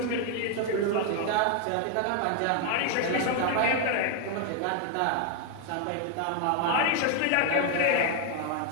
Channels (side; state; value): both; different; correlation 0.00